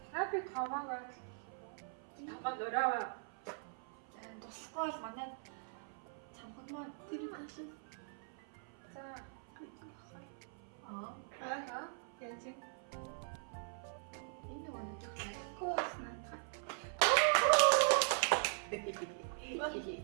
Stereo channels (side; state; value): left; silent; 51 dB below the other